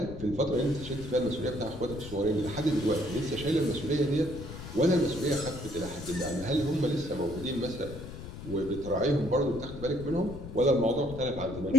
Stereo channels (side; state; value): left; noise; rumble, 11 dB below the sound